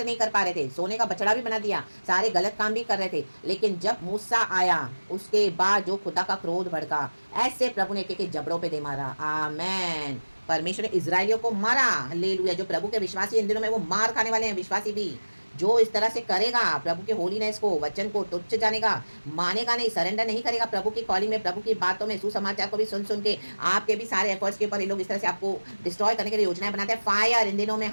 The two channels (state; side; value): inverted; both; correlation -1.00